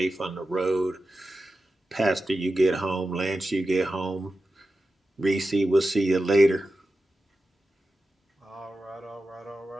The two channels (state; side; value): normal; both; correlation 0.92